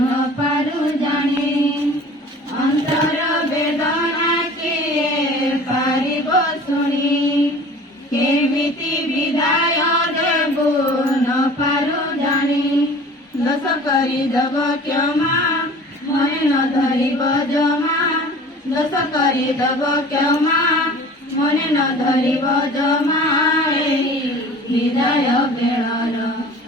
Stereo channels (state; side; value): normal; both; correlation 0.44